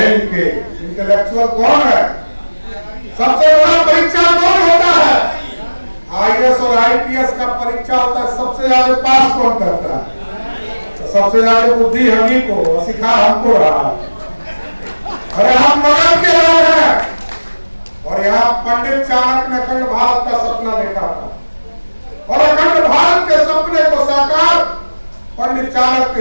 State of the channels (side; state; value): both; inverted; correlation -1.00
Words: लिखे इंटेलेक्चुअल कौन है? सबसे बड़ा परीक्षा कौन होता है? आईएएस और आईपीएस का परीक्षा होता है, सबसे ज्यादा पास कौन करता है? तो सबसे ज्यादा बुद्धि हम को सिखा हमको रहा है। अरे हम मगध के लोग हैं, और यहाँ पंडित चाणक्य ने अखंड भारत का सपना देखा था, और अखंड भारत के सपने को साकार, पंडित चाणक्य के